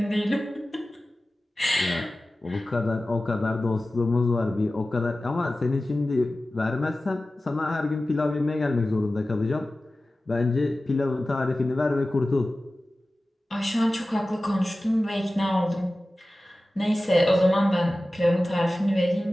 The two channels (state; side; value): normal; both; correlation 0.96